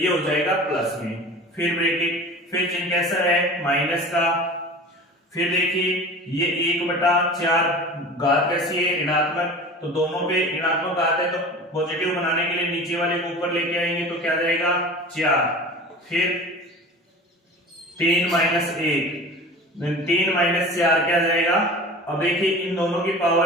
हो जाएगा प्लस में। फिर ब्रैकेट, फिर चिन्ह कैसा है, माइनस का। फिर देखिए ये 1/4 घात कैसी है, ऋणात्मक, तो दोनों पे ऋणात्मक घात है, तो पॉजिटिव बनाने के लिए नीचे वाले को ऊपर लेके आएंगे, तो क्या जाएगा 4। फिर 3 - 1, 3 - 4 क्या जाएगा। अब देखिए इन दोनों की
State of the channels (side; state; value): both; normal; correlation 0.37